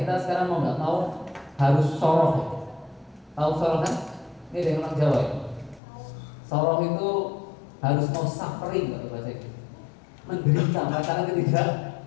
sekarang mau nggak mau harus soroh. Tahu soroh kan? Ini dari orang Jawa ya. Soroh itu harus mau suffering kalau bahasa itu, menderita, merasakan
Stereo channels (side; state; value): right; drops out; at 5.8 s